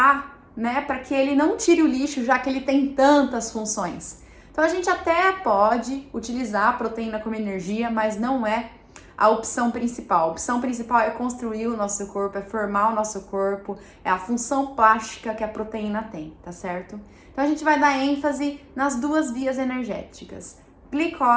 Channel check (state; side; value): identical; both; correlation 1.00